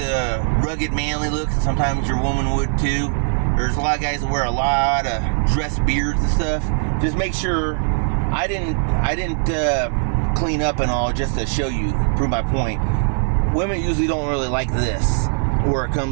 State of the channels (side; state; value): left; silent; digital silence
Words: rugged manly look. Sometimes your woman would too. There's a lot of guys that wear a lot of dress beards and stuff. Just make sure I didn't clean up and all just to show you, prove my point. Women usually don't really like this, where it